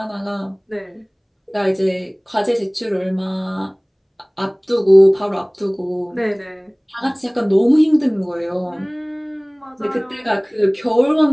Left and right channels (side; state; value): both; identical; correlation 1.00